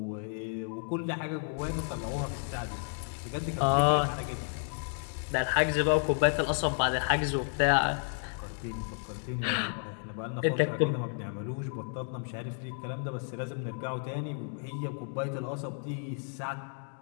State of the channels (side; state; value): right; silent; 56 dB below the other